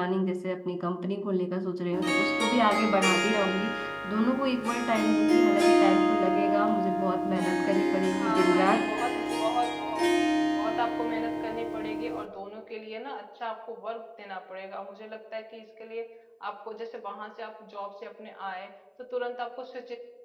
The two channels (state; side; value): identical; both; correlation 1.00